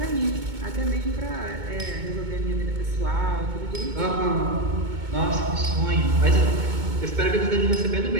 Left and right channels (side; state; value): left; late; 2.2 ms